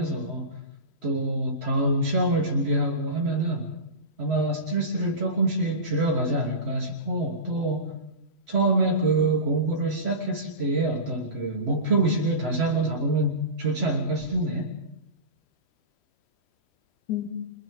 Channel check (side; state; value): right; late; 3.1 ms